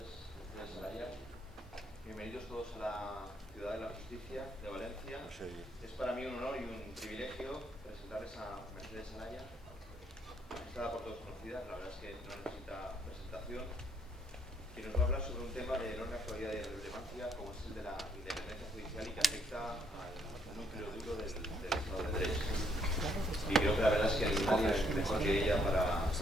desde Salaya. Bienvenidos todos a la Ciudad de la Justicia de Valencia. Es para mí un honor y un privilegio presentarles a Mercedes Salaya, está por todos conocida, la verdad es que no necesita presentación, que nos va a hablar sobre un tema de enorme actualidad y relevancia como es el de la independencia judicial y que afecta al núcleo duro del Estado de Derecho. Y creo que la verdad es que nadie es mejor que ella para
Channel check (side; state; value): both; normal; correlation 0.69